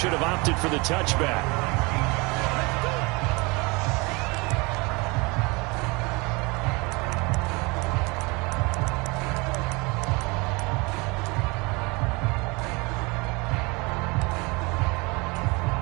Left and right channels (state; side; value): quieter; left; 26.8 dB